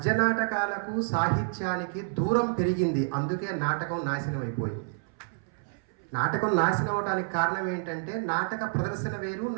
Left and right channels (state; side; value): silent; left; 59 dB below the other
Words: నాటకాలకు సాహిత్యానికి దూరం పెరిగింది, అందుకే నాటకం నాశనం అయిపోయింది. నాటకం నాశనం అవడానికి కారణం ఏంటంటే నాటక ప్రదర్శన వేరు,